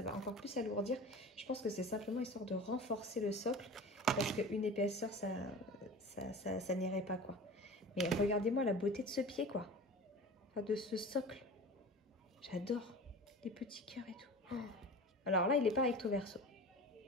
va encore plus alourdir. Je pense que c'est simplement histoire de renforcer le socle. Parce qu'une épaisseur, ça n'irait pas, quoi. Mais regardez-moi la beauté de ce pied, quoi. Enfin, de ce socle. J'adore. Les petits cœurs et tout. Oh. Alors là, il n'est pas recto verso.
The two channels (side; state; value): both; normal; correlation 0.36